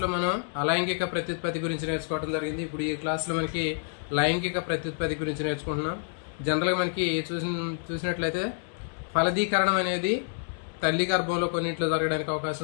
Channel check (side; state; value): right; silent; digital silence